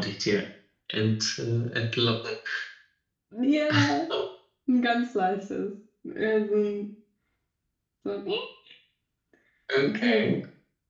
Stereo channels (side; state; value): both; identical; correlation 1.00